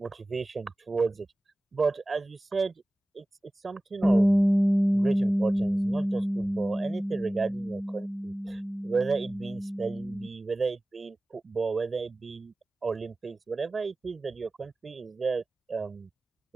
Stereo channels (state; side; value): normal; both; correlation 0.97